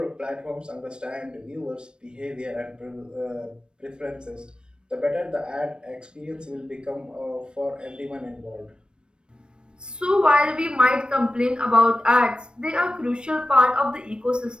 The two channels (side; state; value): left; late; 0.053 ms